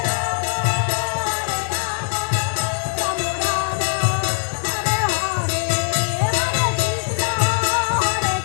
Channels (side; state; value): right; silent; digital silence